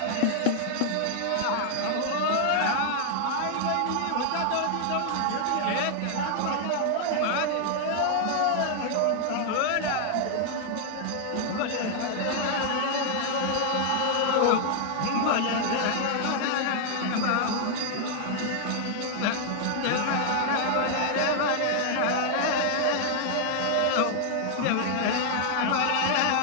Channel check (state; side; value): different; both; correlation 0.00